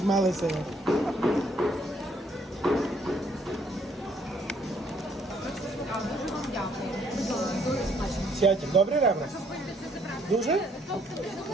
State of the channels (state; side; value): normal; both; correlation 0.66